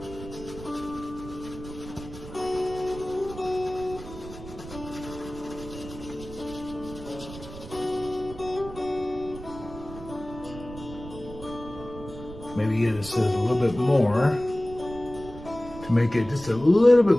Maybe it says a little bit more to make it just a little bit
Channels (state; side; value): noise; right; rumble, 14 dB below the sound